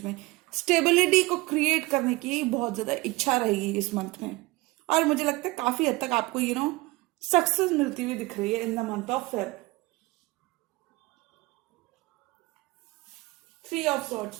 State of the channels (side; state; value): left; quieter; 22.0 dB